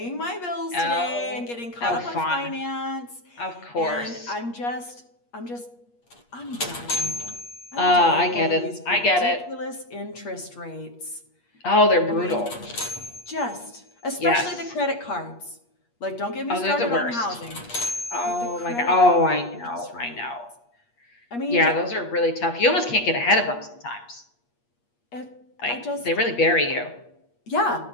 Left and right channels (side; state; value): right; late; 8.4 ms